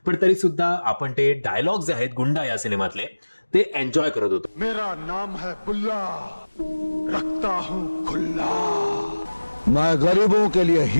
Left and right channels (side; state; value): both; inverted; correlation -1.00